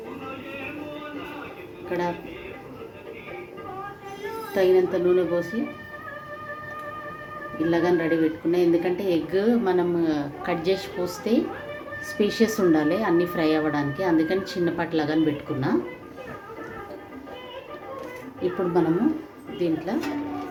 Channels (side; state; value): both; identical; correlation 1.00